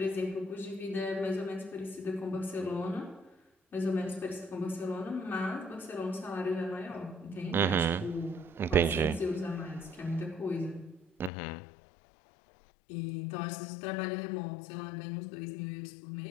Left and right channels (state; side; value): drops out; right; at 11.3 s